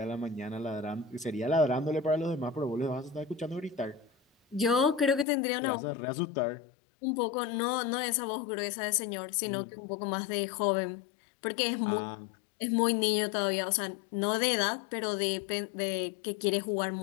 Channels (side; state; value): right; drops out; at 5.2 s